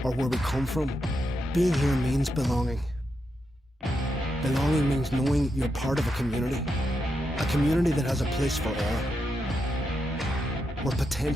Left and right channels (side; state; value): both; normal; correlation 0.84